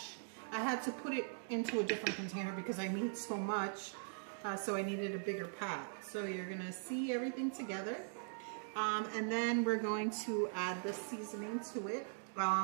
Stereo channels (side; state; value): left; silent; digital silence